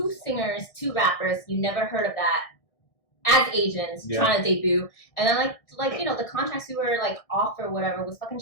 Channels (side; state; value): right; late; 1.6 ms